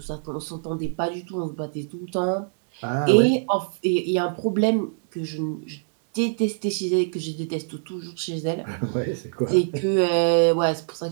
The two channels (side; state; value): left; silent; digital silence